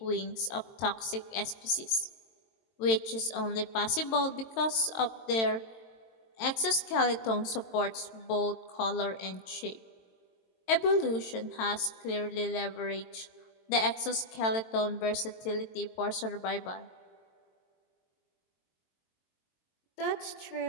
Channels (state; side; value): late; right; 22 ms